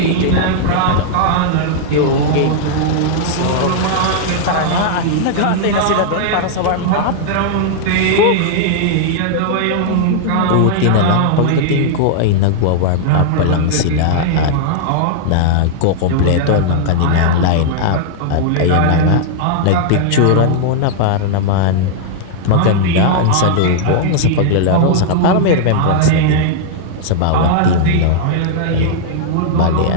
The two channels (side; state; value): both; different; correlation -0.01